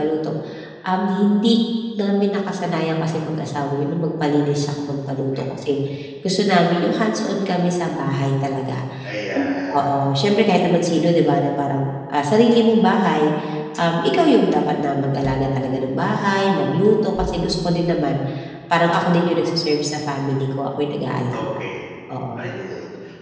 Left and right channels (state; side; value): identical; both; correlation 1.00